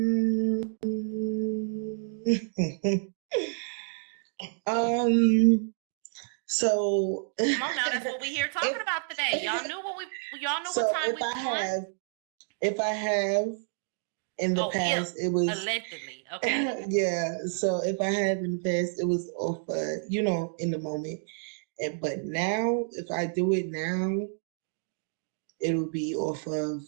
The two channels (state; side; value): silent; left; digital silence